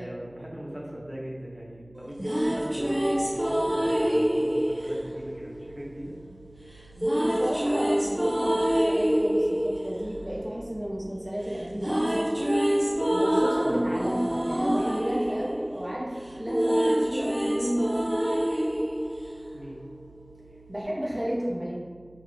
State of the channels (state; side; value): noise; right; hum, 26 dB below the sound